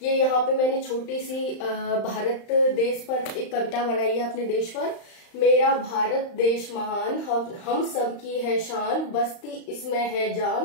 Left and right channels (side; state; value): right; late; 35 ms